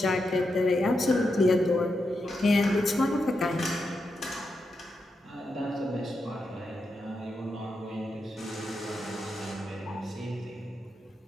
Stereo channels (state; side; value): normal; both; correlation 0.85